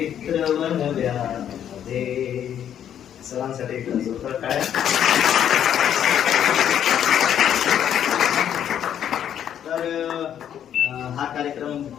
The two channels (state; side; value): quieter; right; 9.7 dB